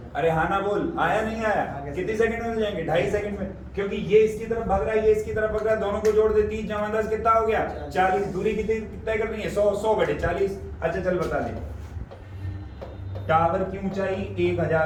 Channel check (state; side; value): identical; both; correlation 1.00